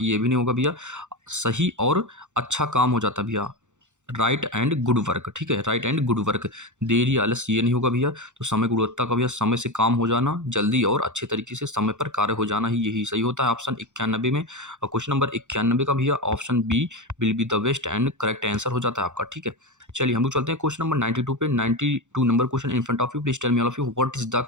ये भी नहीं होगा भैया। सही और अच्छा काम हो जाता है भैया। Right and good work. ठीक है, राइट एंड गुड वर्क। देरी आलस ये नहीं होगा भैया। तो समय गुणवत्ता का भैया समय से काम हो जाना, जल्दी और अच्छे तरीके से समय पर कार्य हो जाना ही, यही सही होता है ऑप्शन 91 में। और क्वेश्चन नंबर 91 का भैया option B will be the best and correct answer हो जाता है आपका। ठीक है, चलिए हम लोग चलते हैं क्वेश्चन नंबर 92 पे। 92 number question in front of you, please tell me all of you what is the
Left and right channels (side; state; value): left; late; 0.84 ms